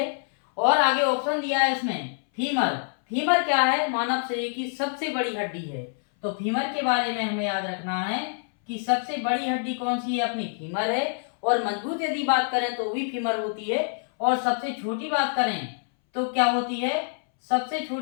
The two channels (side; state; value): right; silent; 61 dB below the other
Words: और आगे ऑप्शन दिया है इसमें फीमर। फीमर क्या है? मानव शरीर की सबसे बड़ी हड्डी है। तो फीमर के बारे में हमें याद रखना है कि सबसे बड़ी हड्डी कौन सी है? अपनी फीमर है। और मजबूत यदि बात करें तो भी फीमर होती है। और सबसे छोटी बात करें तो क्या होती है? सबसे